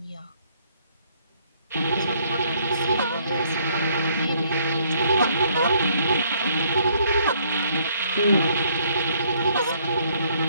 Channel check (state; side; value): inverted; both; correlation -0.66